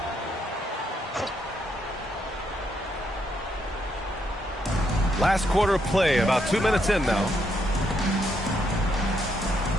Last quarter of play, about 2 minutes in now.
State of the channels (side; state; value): both; normal; correlation 0.76